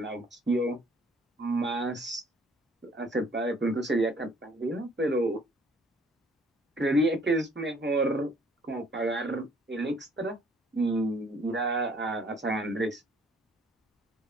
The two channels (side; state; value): both; normal; correlation 0.60